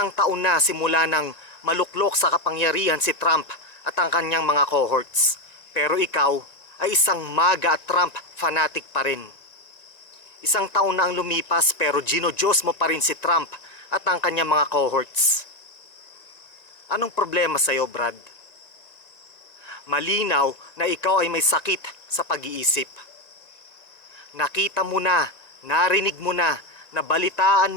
taon na simula nang maluklok sa kapangyarihan si Trump at ang kanyang mga cohorts. Pero ikaw ay isang MAGA at Trump fanatic pa rin. Isang taon na ang lumipas pero ginodiyos mo pa rin si Trump at ang kanyang mga cohorts. Anong problema sa'yo, Brad? Malinaw na ikaw ay may sakit sa pag-iisip. Nakita mo na, narinig mo na, nabalitaan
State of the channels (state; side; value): late; right; 1.9 ms